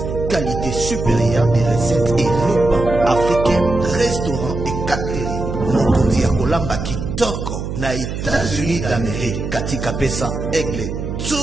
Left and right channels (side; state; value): right; noise; hum, 5 dB below the sound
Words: Qualité supérieure des recettes et repas africains, restaurants et catering. Mokondi Akolamba Kitoko, na États-Unis d'Amérique, Katika Pesa Aigle.